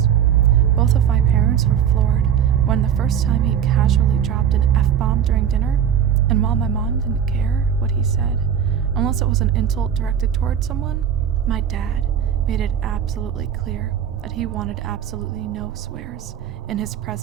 Both of my parents were floored when the first time he casually dropped an F-bomb during dinner, and while my mom didn't care what he said, unless it was an insult directed toward someone, my dad made it absolutely clear that he wanted absolutely no swears in his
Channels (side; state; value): left; quieter; 8.9 dB